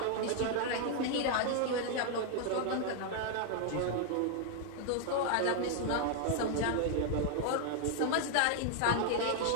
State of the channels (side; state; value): both; different; correlation 0.00